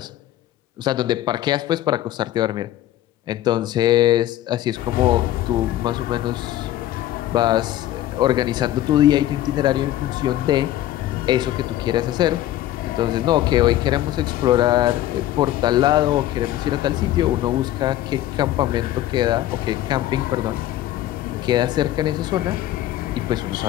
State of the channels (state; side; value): quieter; right; 13.6 dB